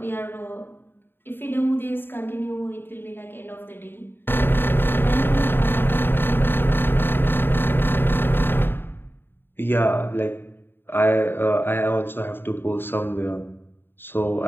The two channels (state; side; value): late; right; 0.10 ms